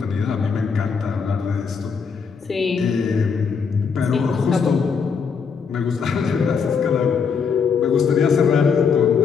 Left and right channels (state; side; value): quieter; right; 5.9 dB